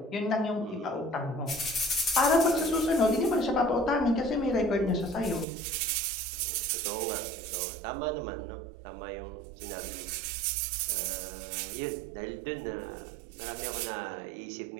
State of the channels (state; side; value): drops out; left; at 5.5 s